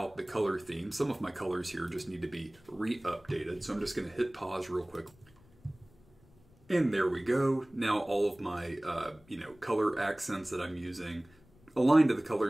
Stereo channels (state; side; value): noise; left; rumble, 28 dB below the sound